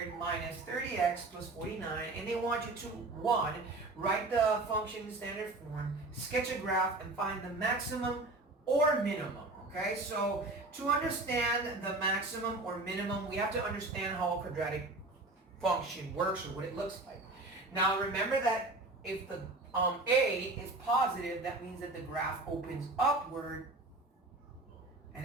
minus 30x plus 49. And they want you to, 1, write the function in standard form, sketch a graph, and find the maximum or minimum. Okay, so to understand the maximum or minimum, we have to understand how a quadratic function works or what it looks like. Now remember that if the a is positive, that means that the graph opens upward. And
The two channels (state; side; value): quieter; left; 3.0 dB